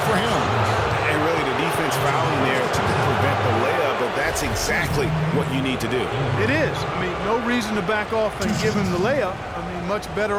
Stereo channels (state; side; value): identical; both; correlation 1.00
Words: him. And really the defense fouling there to prevent the layup, but that's exactly what you need to do. It is. I mean, no reason to back off and give him the layup. I mean, much